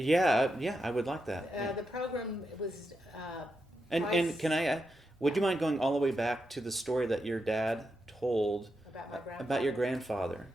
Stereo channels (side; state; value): both; normal; correlation 0.85